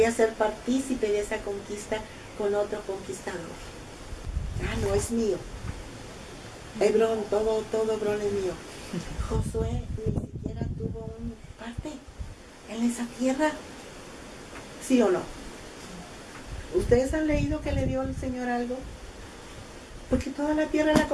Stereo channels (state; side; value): identical; both; correlation 1.00